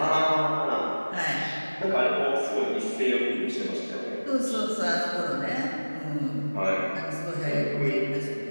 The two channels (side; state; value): both; inverted; correlation -1.00